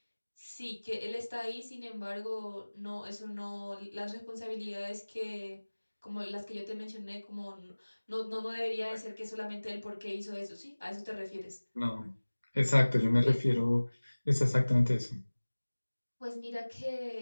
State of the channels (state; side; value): inverted; both; correlation -1.00